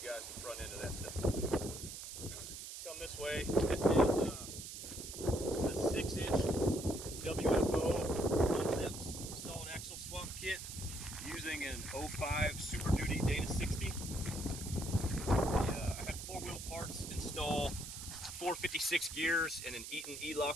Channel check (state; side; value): noise; right; hiss, 9 dB below the sound